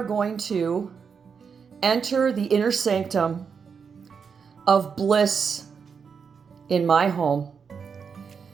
going to enter the inner sanctum of bliss in my home,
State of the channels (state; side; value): quieter; left; 6.2 dB